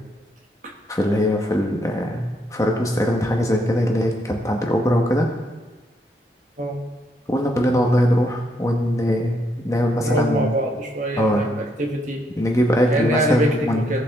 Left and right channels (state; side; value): normal; both; correlation 0.75